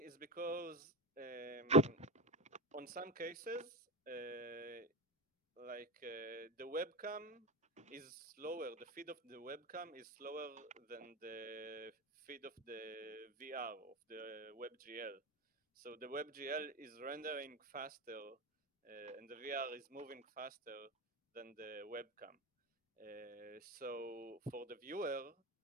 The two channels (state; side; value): normal; both; correlation 0.20